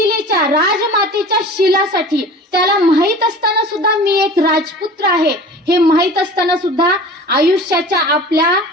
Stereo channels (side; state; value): both; normal; correlation 0.40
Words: राजमातेच्या शिलासाठी, त्याला माहित असताना सुद्धा मी एक राजपुत्र आहे हे माहित असताना सुद्धा आयुष्याच्या आपल्या